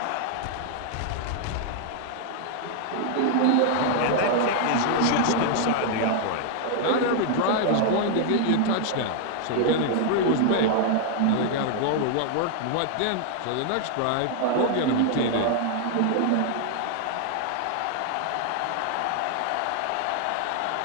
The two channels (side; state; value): both; different; correlation 0.00